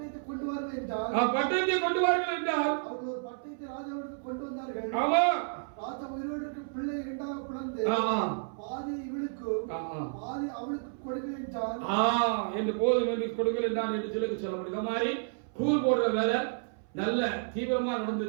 கொண்டு வாருங்கள் என்றால், பட்டயத்தை கொண்டு வாருங்கள் என்றால் அவர்கள் ஒரு பட்டயத்தை ராஜாவிற்கு கொண்டு வந்தார்கள். ஆமா, ராஜா உயிரோடு இருக்கிற பிள்ளை இரண்டாக பிளந்து பாதி இவளுக்கும் பாதி அவளுக்கு கொடுங்கள் என்றால் என்று போதும் என்று கொடுங்கள் என்றான் என்று சொல்லப்படுது. இந்த மாதிரி கூர் போடுற வேலை நல்ல தீவிரமா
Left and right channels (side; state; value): left; silent; 57 dB below the other